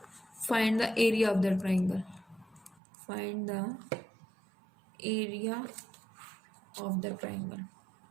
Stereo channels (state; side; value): drops out; left; at 2.8 s